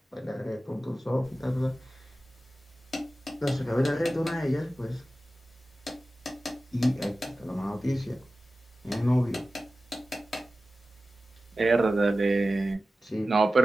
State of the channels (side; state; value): both; normal; correlation 0.95